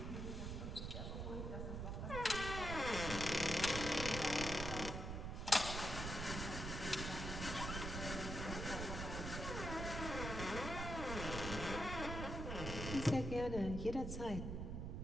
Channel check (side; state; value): right; noise; rumble, 4 dB below the sound